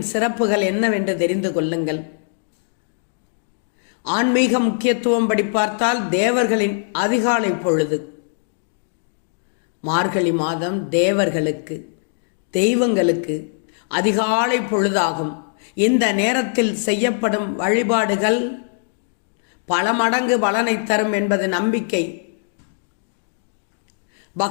சிறப்புகள் என்னவென்று தெரிந்து கொள்ளுங்கள். ஆன்மீக முக்கியத்துவம் படி பார்த்தால் தேவர்களின் அதிகாலை பொழுது. மார்கழி மாதம் தேவர்களுக்கு, தெய்வங்களுக்கு அதிகாலை பொழுதாகும். இந்த நேரத்தில் செய்யப்படும் வழிபாடுகள் பல மடங்கு பலனை தரும் என்பது நம்பிக்கை.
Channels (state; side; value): silent; right; digital silence